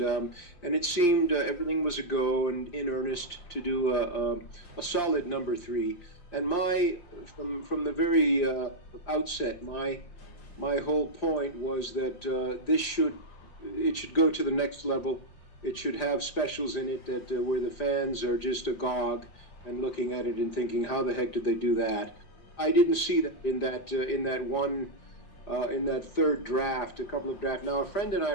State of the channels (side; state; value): right; late; 5.7 ms